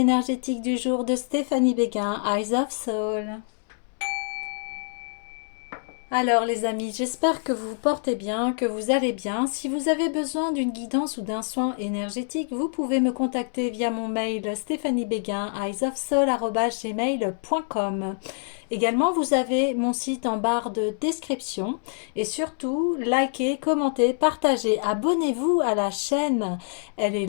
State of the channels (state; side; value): silent; right; 61 dB below the other